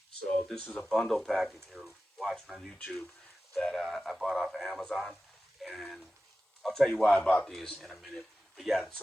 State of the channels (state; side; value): normal; both; correlation 0.94